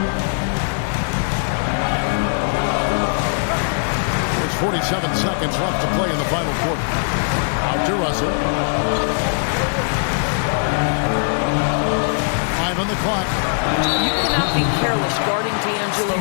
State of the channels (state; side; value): silent; right; digital silence